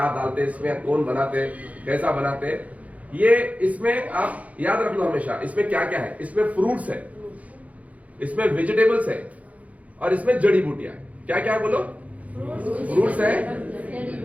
डालते इसमें, कौन बनाते, कैसा बनाते। ये इसमें आप याद रख लो हमेशा, इसमें क्या क्या है, इसमें फ्रूट्स है, इसमें वेजिटेबल्स है, और इसमें जड़ी बूटियां है। क्या क्या है बोलो? फ्रूट्स है,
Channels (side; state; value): left; late; 0.069 ms